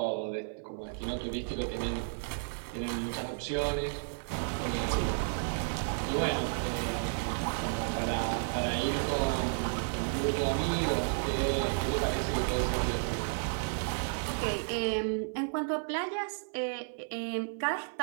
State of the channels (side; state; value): left; silent; 56 dB below the other